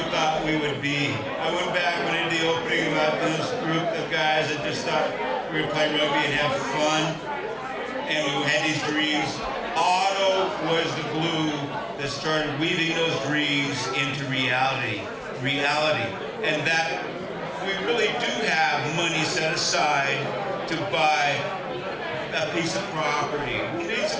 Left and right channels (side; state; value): both; identical; correlation 1.00